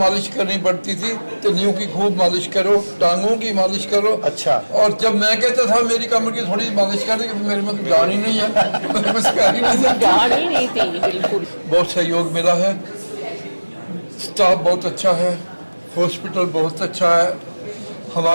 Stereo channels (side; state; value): both; inverted; correlation -1.00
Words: करनी पड़ती थी, तलियों की खूब मालिश करो, टांगों की मालिश करो। अच्छा। और जब मैं कहता था मेरी कमर की थोड़ी मालिश कर दे, मेरे में तो जान ही नहीं है, मेरे में सिखा ही नहीं जान ही नहीं थी बिल्कुल। बहुत सहयोग मिला है, स्टाफ बहुत अच्छा है, हॉस्पिटल बहुत अच्छा है।